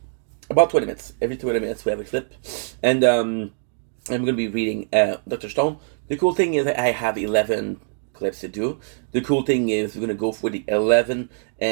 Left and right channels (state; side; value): silent; left; digital silence